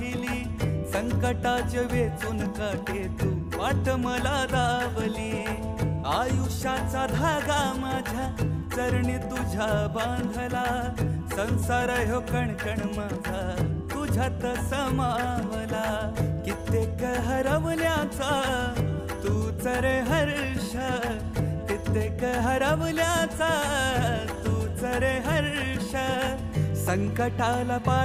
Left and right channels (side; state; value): both; identical; correlation 1.00